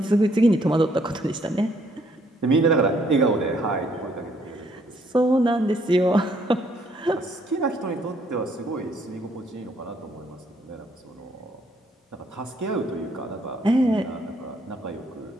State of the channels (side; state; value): both; normal; correlation 0.68